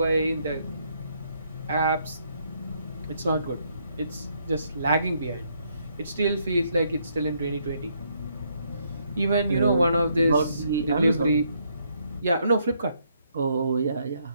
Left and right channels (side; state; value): both; inverted; correlation -0.72